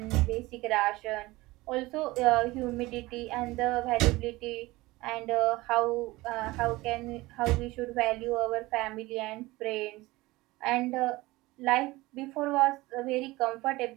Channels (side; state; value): left; quieter; 20.3 dB